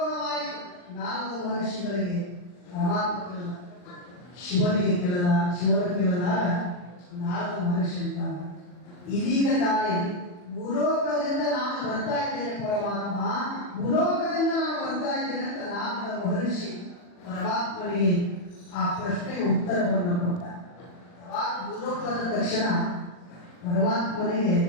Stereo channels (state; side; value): late; right; 40 ms